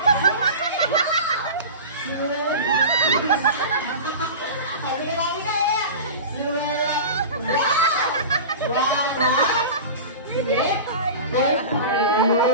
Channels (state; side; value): inverted; both; correlation -0.32